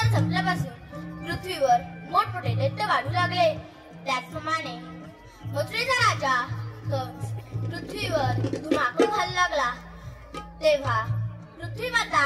संपल्यापासून पृथ्वीवर मोठमोठे दैत्य वाढू लागले. त्याचप्रमाणे मथुरेचा राजा कंस पृथ्वीवर धुमाकूळ घालू लागला. तेव्हा पृथ्वी माता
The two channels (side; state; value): both; identical; correlation 1.00